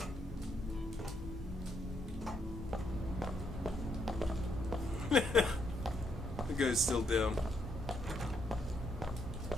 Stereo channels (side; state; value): both; normal; correlation 0.75